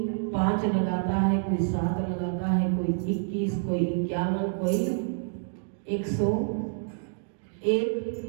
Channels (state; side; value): silent; left; digital silence